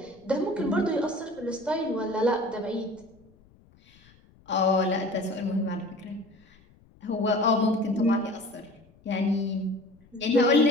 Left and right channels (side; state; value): left; noise; rumble, 28 dB below the sound